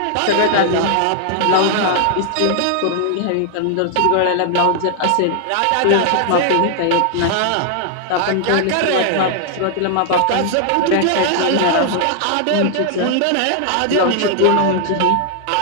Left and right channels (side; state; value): both; different; correlation 0.00